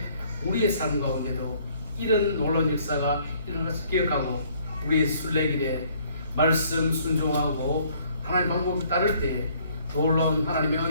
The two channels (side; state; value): both; inverted; correlation -0.61